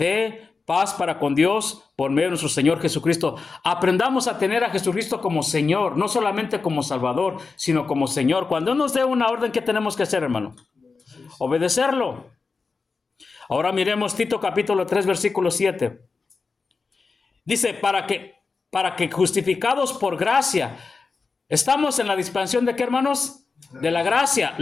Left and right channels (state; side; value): quieter; right; 4.5 dB